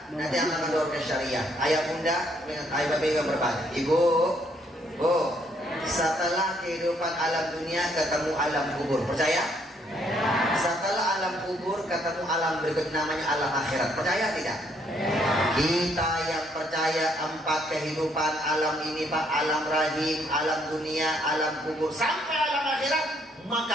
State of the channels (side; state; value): both; normal; correlation 0.69